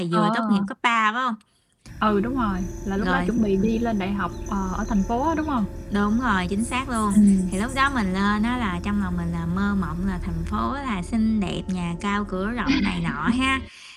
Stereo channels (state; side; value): identical; both; correlation 1.00